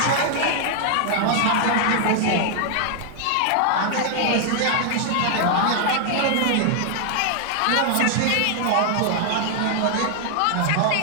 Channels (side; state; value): both; different; correlation 0.00